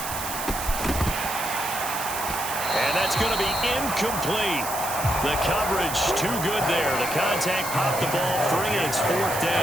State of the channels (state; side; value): noise; right; hiss, 6 dB below the sound